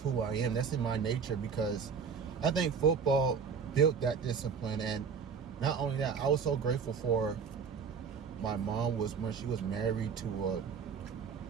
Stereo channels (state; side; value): quieter; left; 6.2 dB